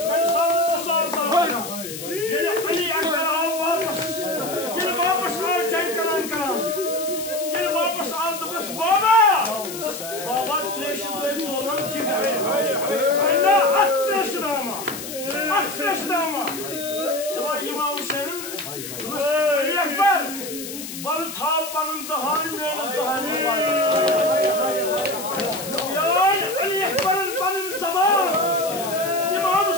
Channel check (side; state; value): left; noise; hiss, 9 dB below the sound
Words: İmam Hüseyin'in Ekber balı tağpanın dahani mühendis dahani var. Ali Ekber'in benim zaman İmam